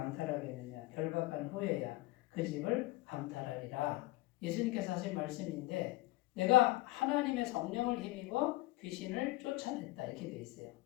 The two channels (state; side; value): quieter; right; 19.5 dB